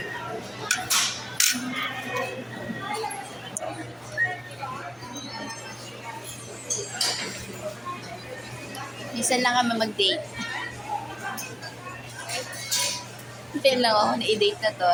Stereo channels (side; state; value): both; identical; correlation 1.00